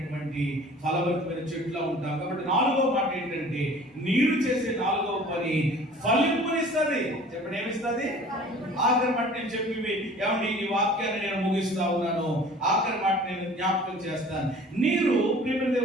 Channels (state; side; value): normal; both; correlation 0.47